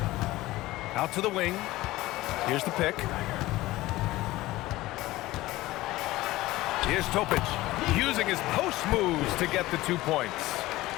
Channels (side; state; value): right; quieter; 17.8 dB